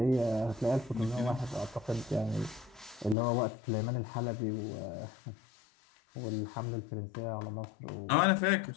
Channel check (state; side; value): drops out; right; at 3.2 s